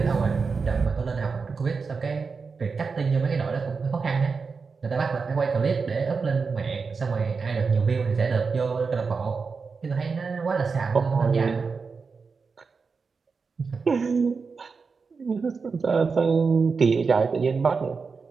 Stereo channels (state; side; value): quieter; left; 4.9 dB